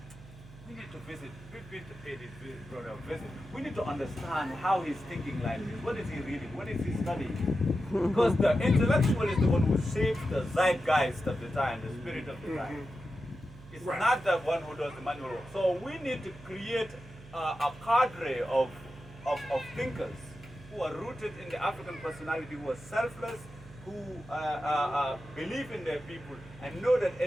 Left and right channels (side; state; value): right; noise; hum, 19 dB below the sound